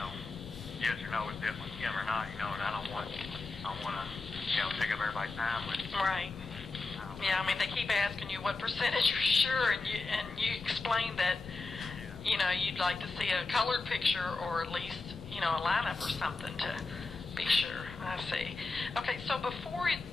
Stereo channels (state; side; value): quieter; right; 3.6 dB